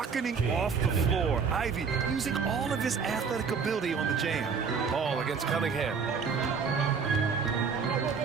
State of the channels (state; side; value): quieter; left; 5.8 dB